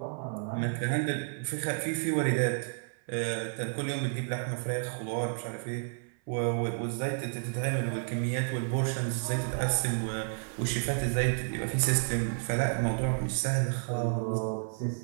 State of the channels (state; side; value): silent; left; 57 dB below the other